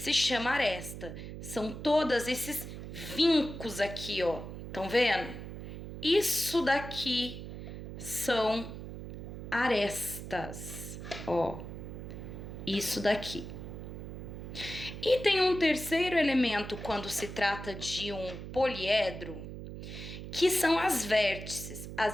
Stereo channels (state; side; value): noise; right; hum, 9 dB below the sound